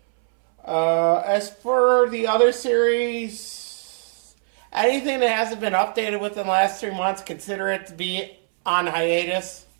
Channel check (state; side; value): silent; left; 64 dB below the other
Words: As for the other series, anything that hasn't been updated within the last 3 months, consider it to be on hiatus.